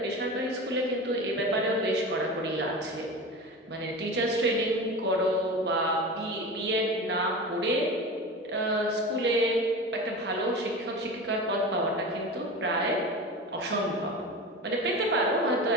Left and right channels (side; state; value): both; normal; correlation 0.30